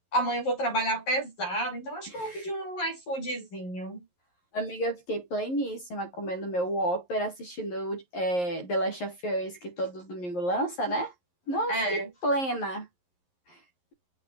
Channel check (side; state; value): right; late; 11 ms